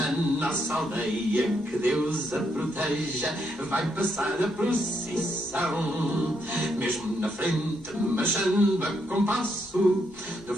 nossa aldeia, que Deus a proteja, vai passar a procissão. Mesmo na frente, marchando a compasso, de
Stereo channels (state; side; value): normal; both; correlation 0.77